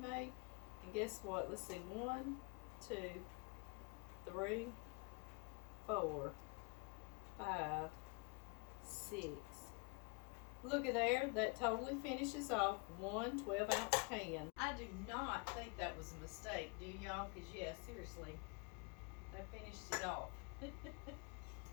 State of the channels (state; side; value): quieter; right; 30.8 dB